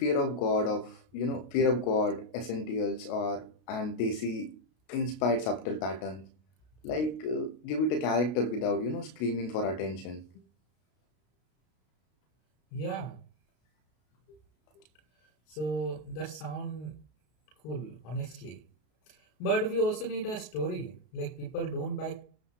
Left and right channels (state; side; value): late; right; 33 ms